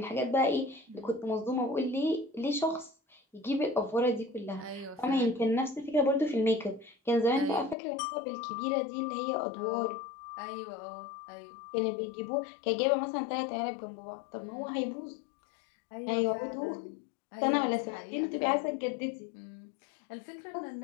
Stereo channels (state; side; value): drops out; right; at 7.8 s